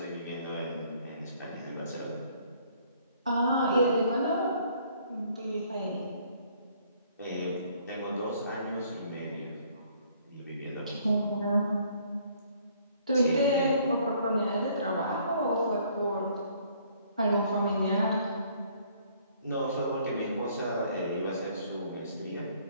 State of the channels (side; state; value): both; inverted; correlation -0.62